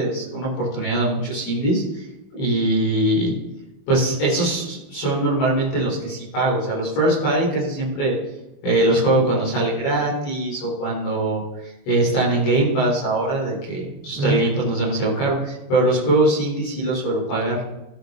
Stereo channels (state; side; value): late; right; 21 ms